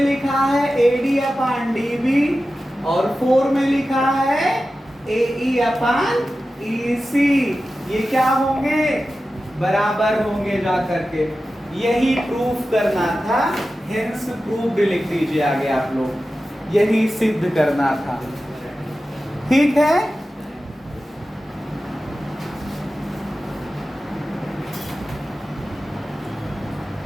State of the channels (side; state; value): both; normal; correlation 0.94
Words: लिखा है AD अपन DB और 4 में लिखा है AE अपन EC। ये क्या होंगे? बराबर होंगे जा करके। यही प्रूफ करना था, हेंस प्रूव्ड लिख दीजिए आगे आप लोग। यही सिद्ध करना था। ठीक है।